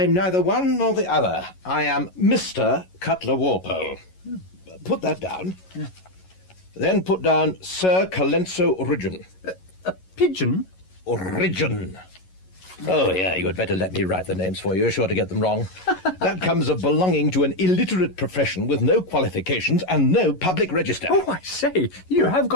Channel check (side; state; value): right; late; 11 ms